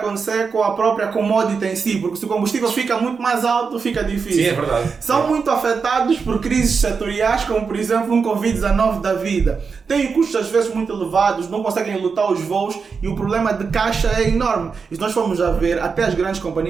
com a própria commodity em si, porque se o combustível fica muito mais alto, fica difícil. Sim, é verdade. São muito afetados por crises setoriais, como por exemplo um Covid-19 da vida. Têm custos às vezes muito elevados, não conseguem lutar os voos e o problema de caixa é enorme. E se nós formos a ver, até as grandes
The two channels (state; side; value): quieter; left; 5.4 dB